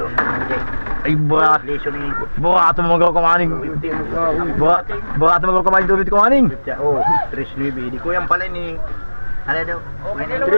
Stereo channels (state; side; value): inverted; both; correlation -1.00